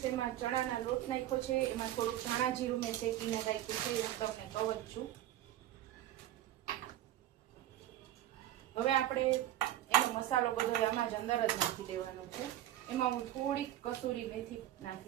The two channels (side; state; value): left; quieter; 13.1 dB